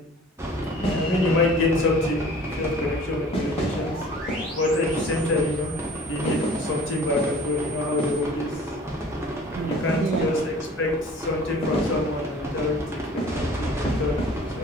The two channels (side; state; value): both; normal; correlation 0.48